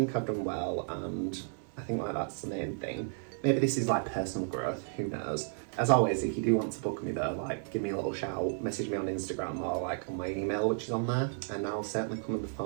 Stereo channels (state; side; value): silent; left; 56 dB below the other